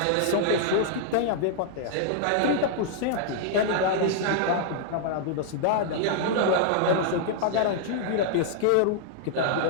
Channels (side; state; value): both; different; correlation -0.01